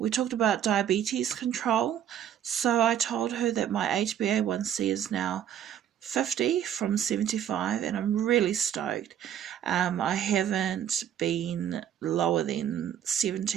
talked about diabetes control. So I told her that my HbA1c is now 50 from 75, and I'm really stoked. I haven't been lower than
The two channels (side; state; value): left; quieter; 9.9 dB